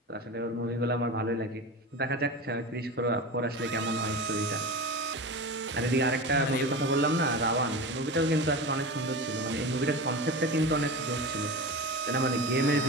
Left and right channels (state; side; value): normal; both; correlation 0.27